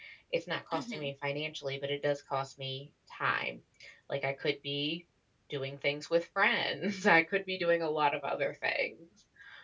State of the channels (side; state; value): both; identical; correlation 1.00